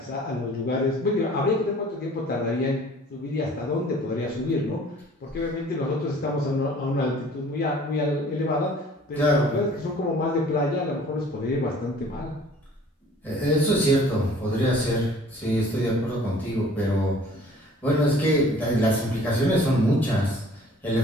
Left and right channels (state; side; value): normal; both; correlation 0.52